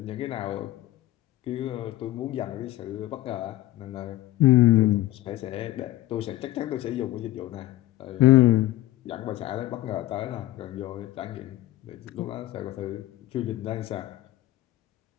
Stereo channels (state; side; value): quieter; right; 15.8 dB